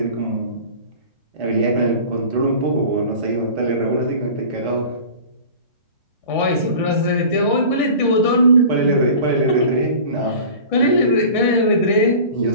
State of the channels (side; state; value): both; inverted; correlation -0.39